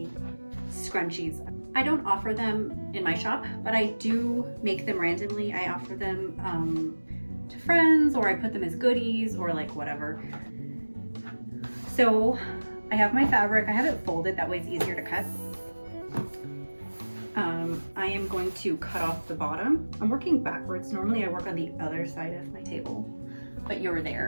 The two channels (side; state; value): both; inverted; correlation -1.00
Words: scrunchies. I don't offer them in my shop, but I do make them randomly. I offer them to friends, or I put them as goodies, or like whatever. So I have my fabric. I have it folded, that way it's easier to cut. I am going to cut off the bottom. I'm working backwards. Normally I work on the other side of my table, but you're